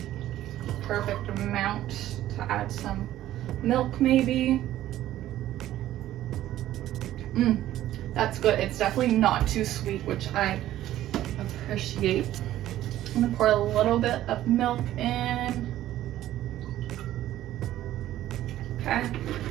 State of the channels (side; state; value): left; quieter; 13.6 dB